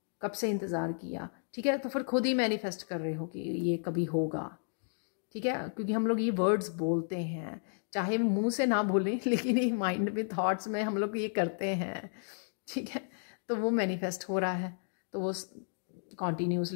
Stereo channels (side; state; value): right; silent; digital silence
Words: कब से इंतज़ार किया, ठीक है। तो फिर खुद ही मैनिफेस्ट कर रहे हो कि ये कभी होगा, ठीक है, क्योंकि हम लोग ये वर्ड्स बोलते हैं, चाहे मुंह से ना बोलें, लेकिन ये माइंड में, थॉट्स में हम लोग ये करते हैं, ठीक है। तो वो मैनिफेस्ट हो रहा है, तो वो